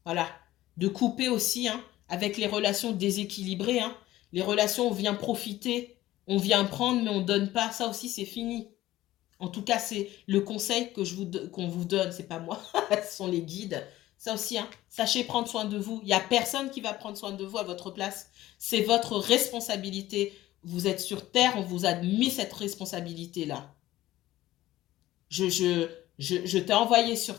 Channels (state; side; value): quieter; right; 15.6 dB